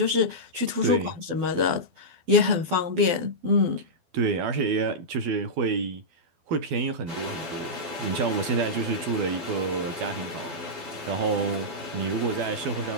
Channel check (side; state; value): left; late; 12 ms